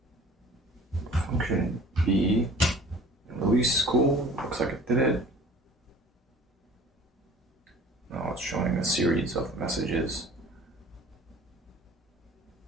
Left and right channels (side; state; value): both; normal; correlation 0.47